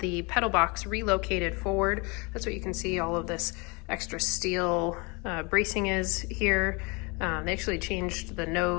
pedal box relocated forward. That's what you can see all of this extra steel bracing is here. They actually changed the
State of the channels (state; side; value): quieter; right; 29.1 dB